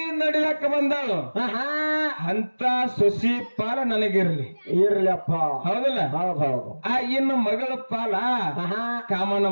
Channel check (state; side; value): inverted; both; correlation -1.00